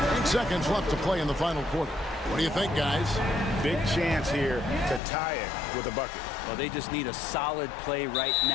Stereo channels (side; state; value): right; drops out; at 5.0 s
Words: 8 seconds left to play in the final quarter. What do you think, guys? Big chance here to tie it with a bucket. Well, they just need a solid play right